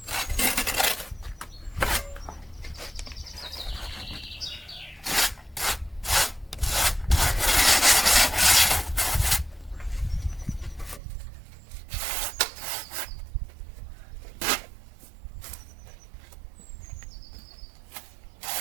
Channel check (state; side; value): drops out; left; at 11.0 s